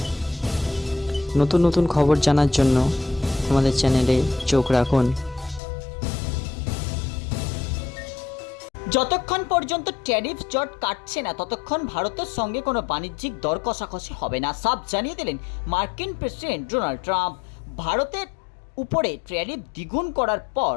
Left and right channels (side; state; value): right; drops out; at 5.6 s